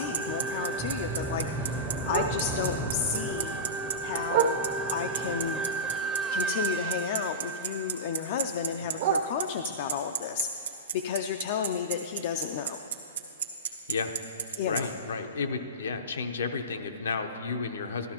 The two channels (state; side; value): normal; both; correlation -0.20